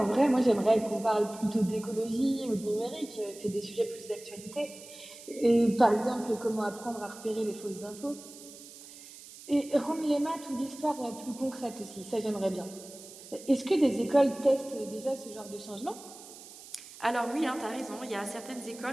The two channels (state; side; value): noise; right; hiss, 17 dB below the sound